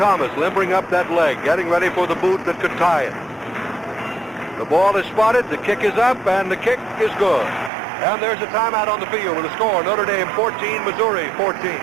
limbering up that leg, getting ready for the boot that could tie it. The ball is spotted, the kick is up, and the kick is good. And there's a timeout on the field with a score, Notre Dame 14, Missouri 14.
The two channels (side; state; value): left; drops out; at 7.7 s